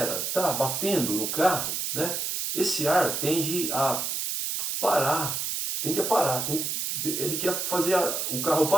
está batendo no carro, né? Esse ar tende a parar, ele quer fazer o carro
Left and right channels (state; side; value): noise; right; hiss, 1 dB below the sound